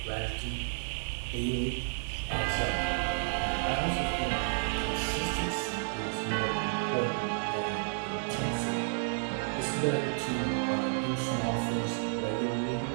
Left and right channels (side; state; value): left; silent; digital silence